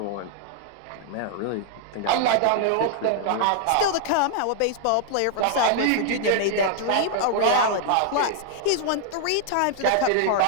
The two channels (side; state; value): both; different; correlation -0.01